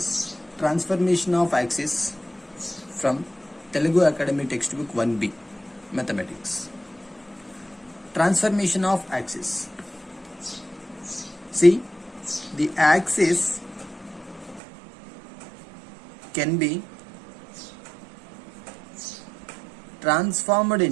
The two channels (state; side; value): drops out; left; at 14.6 s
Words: transformation of axis from Telugu Academy textbook 1B Mathematics. Transformation of axis. See, the axis can be transformed